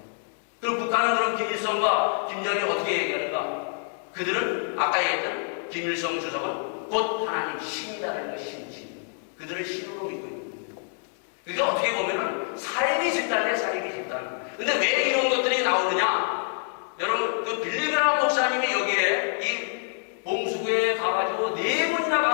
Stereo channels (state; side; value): silent; right; 57 dB below the other